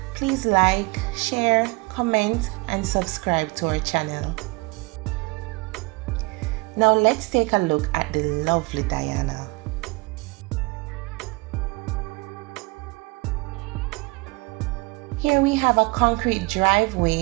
please like, share, comment, and subscribe to our channel. Now let's take a look at the lovely Diana. Here we have a concrete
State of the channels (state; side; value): quieter; left; 26.6 dB